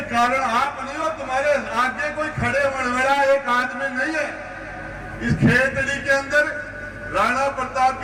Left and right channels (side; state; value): both; identical; correlation 1.00